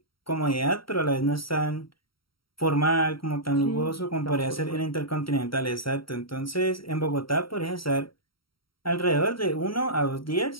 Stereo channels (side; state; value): right; late; 0.74 ms